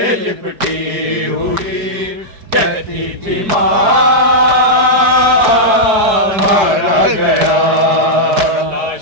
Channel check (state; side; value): late; left; 4.6 ms